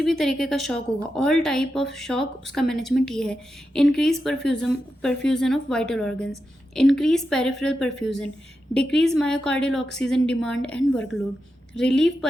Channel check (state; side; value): normal; both; correlation 0.89